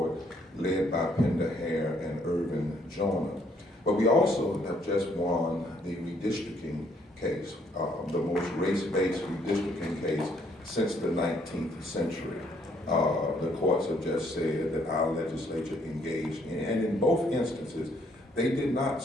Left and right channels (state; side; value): normal; both; correlation 0.68